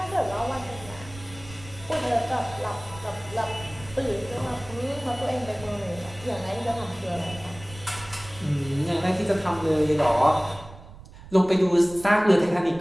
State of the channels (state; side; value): noise; right; rumble, 18 dB below the sound